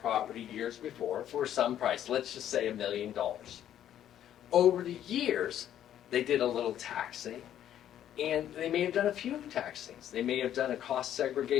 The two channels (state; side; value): quieter; right; 10.9 dB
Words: property years before for some price. Let's just say $1 million. Over the years, they did a little taxing, and they may have done a few tax things. They may have done a cost